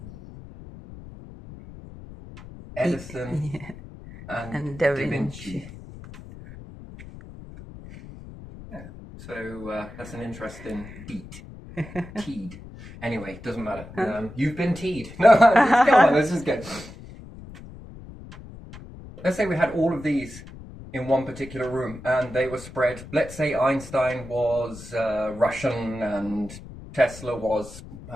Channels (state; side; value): noise; left; rumble, 15 dB below the sound